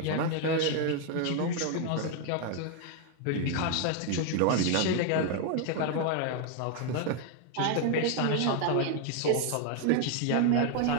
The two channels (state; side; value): different; both; correlation 0.01